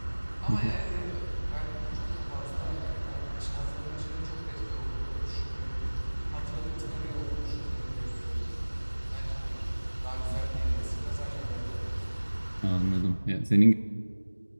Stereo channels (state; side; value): inverted; both; correlation -1.00